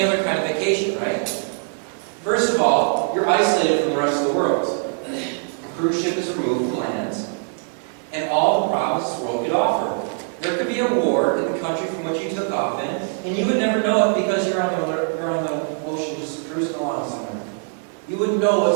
other kind of vacation, right? First of all, you're isolated from the rest of the world. A cruise ship is removed from land, and all the problems this world could offer. There could be a war in the country from which you took off in, and you would never know it because you're on the ocean just cruising along somewhere. You wouldn't know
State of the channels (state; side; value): silent; left; 57 dB below the other